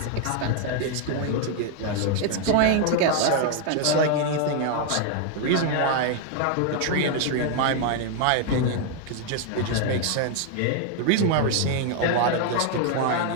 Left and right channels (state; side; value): different; both; correlation 0.00